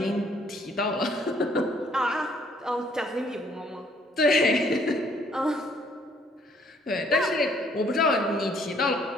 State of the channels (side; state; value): both; normal; correlation 0.63